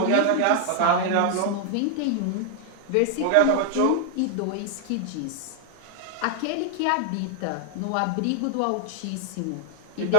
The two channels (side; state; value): both; different; correlation 0.00